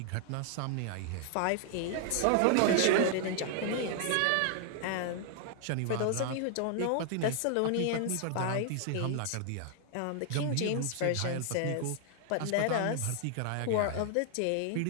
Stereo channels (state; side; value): different; both; correlation 0.00